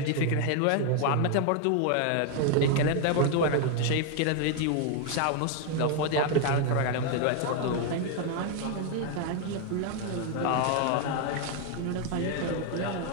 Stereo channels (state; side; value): different; both; correlation 0.00